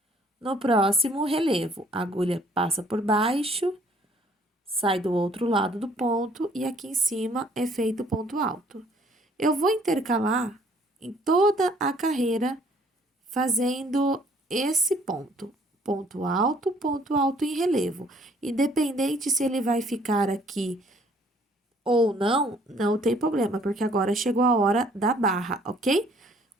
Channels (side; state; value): both; normal; correlation 0.60